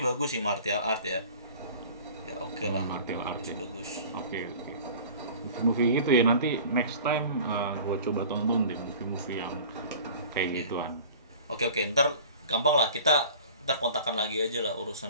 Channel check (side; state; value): both; inverted; correlation -0.43